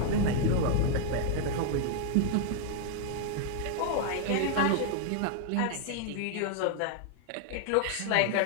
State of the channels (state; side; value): different; both; correlation -0.01